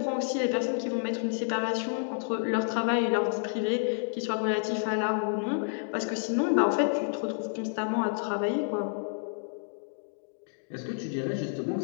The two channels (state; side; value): silent; right; digital silence